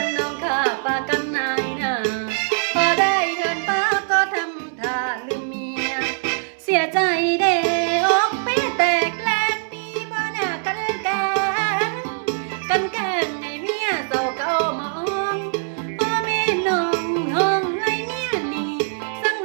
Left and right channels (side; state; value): left; silent; digital silence